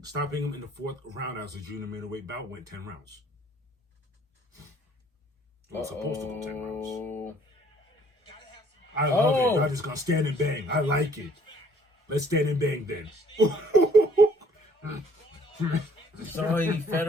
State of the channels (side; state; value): both; normal; correlation 0.60